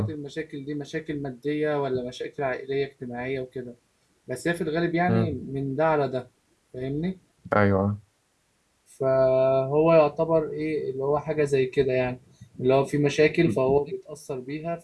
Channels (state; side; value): identical; both; correlation 1.00